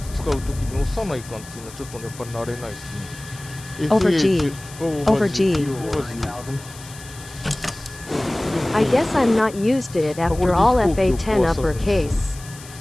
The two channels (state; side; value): noise; left; hiss, 17 dB below the sound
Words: 使うときに押さないかんっていうのはちょっとやっぱり慣れないですね。Over G. Over G. I guess I'm not used to it after all FA10 uppercase.